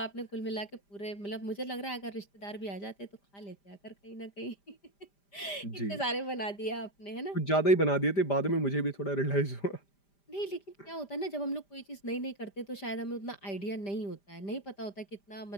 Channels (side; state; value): right; late; 5.0 ms